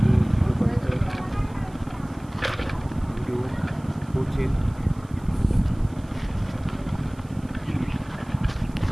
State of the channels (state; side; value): noise; right; hiss, 28 dB below the sound